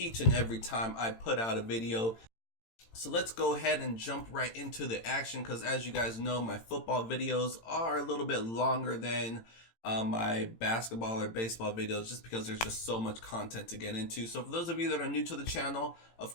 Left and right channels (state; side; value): late; right; 18 ms